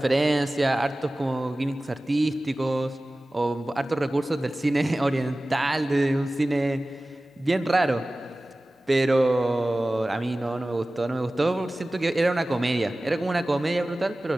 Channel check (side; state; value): both; normal; correlation 0.97